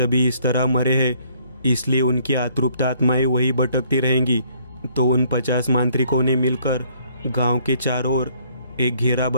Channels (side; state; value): both; inverted; correlation -0.63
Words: इस तरह मरे हैं, इसलिए उनकी अतृप्त आत्माएं वही भटकती रहेंगी। तो उन 50 मांत्रिकों ने मिलकर गांव के चारों ओर एक घेरा